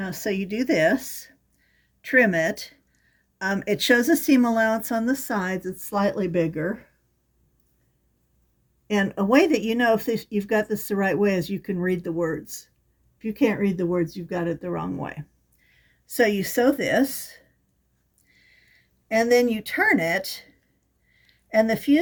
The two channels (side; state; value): both; identical; correlation 1.00